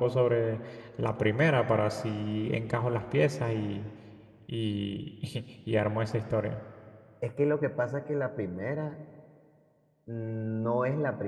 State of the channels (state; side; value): identical; both; correlation 1.00